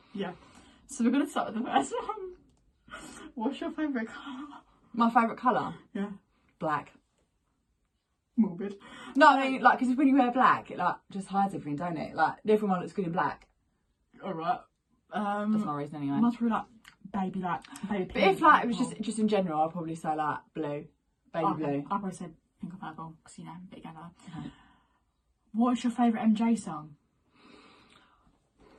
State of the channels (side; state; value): both; identical; correlation 1.00